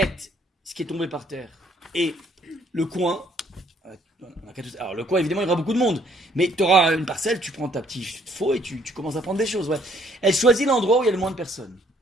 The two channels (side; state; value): both; normal; correlation 0.64